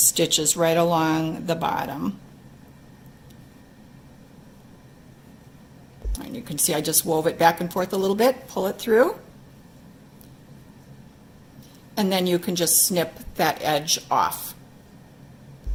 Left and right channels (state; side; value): identical; both; correlation 1.00